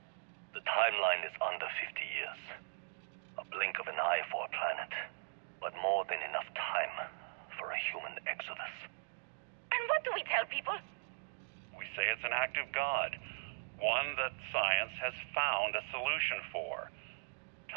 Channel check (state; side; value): silent; left; digital silence